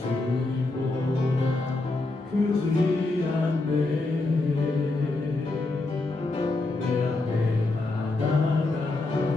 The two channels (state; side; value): quieter; right; 3.1 dB